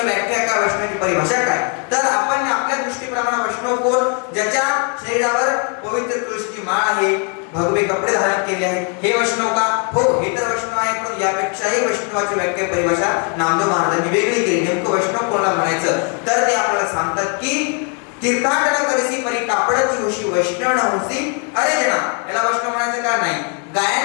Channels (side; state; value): right; quieter; 39.8 dB